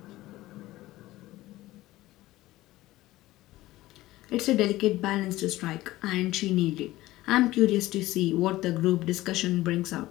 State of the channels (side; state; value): right; quieter; 17.1 dB